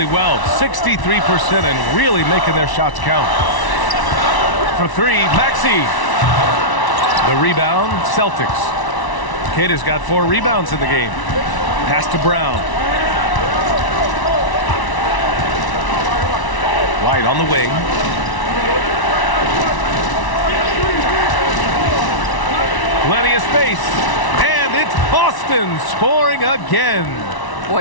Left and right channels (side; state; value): right; late; 1.0 ms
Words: well. 63% and really making their shots count. For 3, Maxey. The rebound, Celtics. Kata's got 4 rebounds in the game. Pass to Brown. White on the wing. Plenty of space. And it's Boston scoring again.